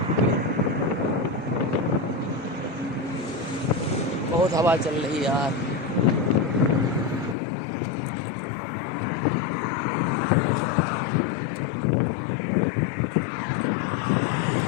बहुत हवा चल रही है यार।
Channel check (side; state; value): right; drops out; at 7.4 s